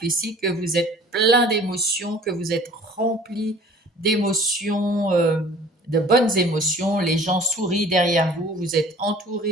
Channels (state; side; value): normal; both; correlation 0.49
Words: ici que vous êtes plein d'émotions, que vous êtes rempli d'émotions, de bonnes émotions. Les gens sourient derrière vous, vous êtes